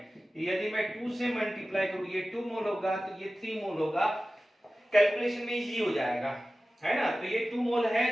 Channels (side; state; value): both; normal; correlation 0.95